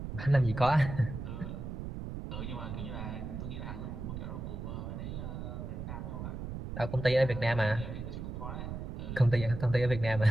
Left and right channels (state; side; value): noise; right; rumble, 6 dB below the sound